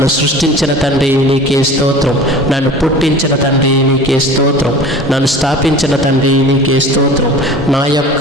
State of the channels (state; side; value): normal; both; correlation 0.40